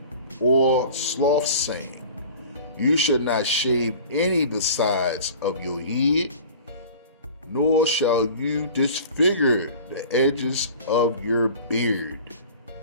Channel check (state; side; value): inverted; both; correlation -0.41